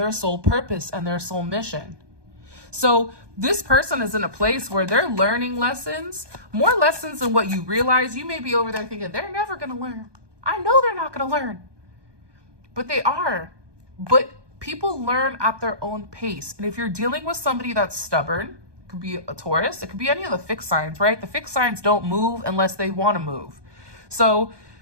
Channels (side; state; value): left; late; 1.2 ms